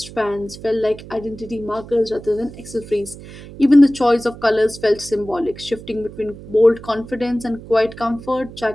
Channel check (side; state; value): right; noise; hum, 16 dB below the sound